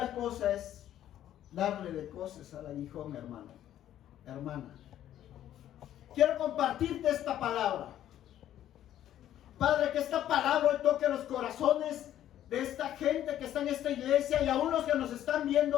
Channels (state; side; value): quieter; right; 11.8 dB